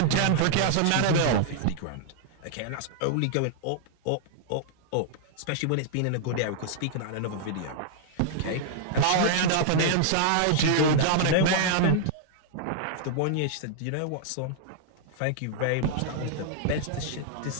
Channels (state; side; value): different; both; correlation -0.01